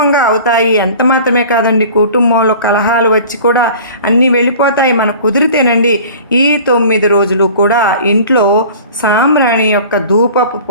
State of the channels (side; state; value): both; inverted; correlation -0.43